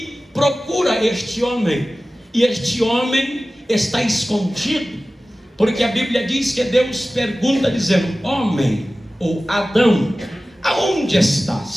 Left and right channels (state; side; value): normal; both; correlation 0.96